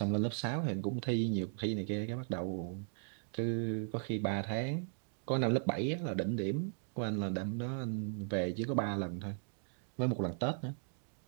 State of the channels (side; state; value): left; silent; digital silence